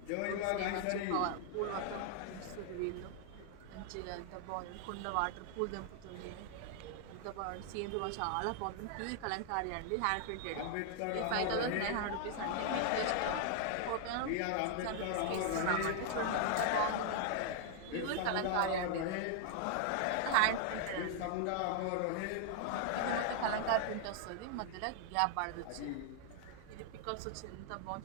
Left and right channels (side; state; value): both; different; correlation 0.00